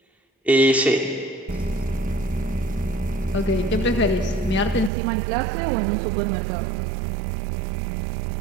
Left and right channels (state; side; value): drops out; left; at 4.9 s